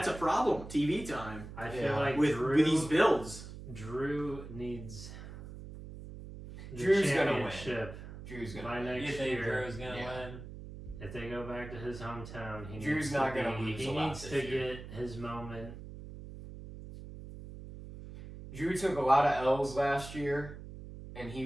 a problem. TV time I feel Yeah. like with these builds. Drew needs the Drew's gonna win. championship Drew's by gonna. next You think year. Drew's gonna Yeah. win? If they go back to his hometown, he Drew's needs not to gonna be, lose he a lot needs this to year. get his moment. Drew took a lot of L's last year, and he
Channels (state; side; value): noise; right; hum, 12 dB below the sound